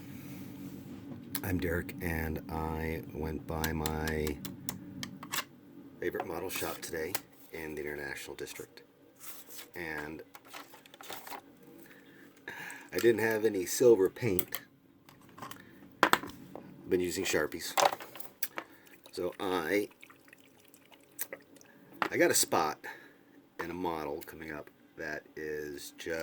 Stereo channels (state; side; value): identical; both; correlation 1.00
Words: I'm Derrick, and I went by my favorite model shop today in the International District. And I didn't have any silver paint. I've been using Sharpies. So I got a spot in a model coming up that is